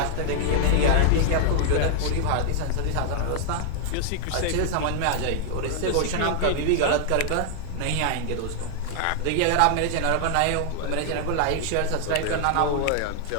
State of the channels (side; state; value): both; different; correlation 0.00